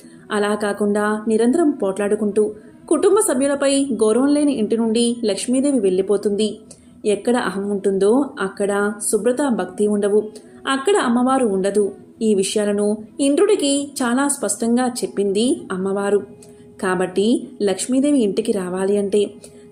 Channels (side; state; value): both; identical; correlation 1.00